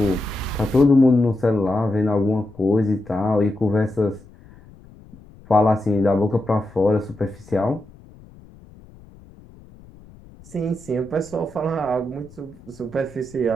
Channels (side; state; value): left; noise; rumble, 23 dB below the sound